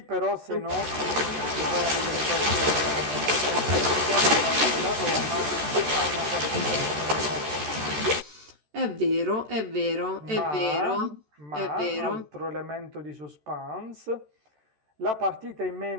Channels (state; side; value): late; left; 13 ms